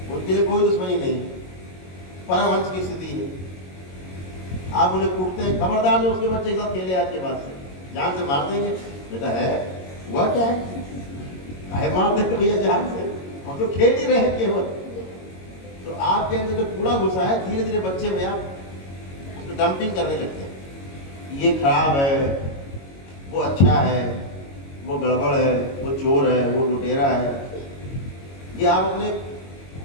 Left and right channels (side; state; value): right; late; 22 ms